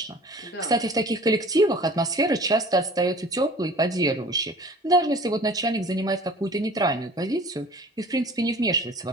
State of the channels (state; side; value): normal; both; correlation 0.46